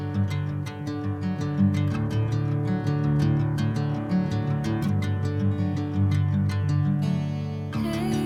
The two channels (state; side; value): identical; both; correlation 1.00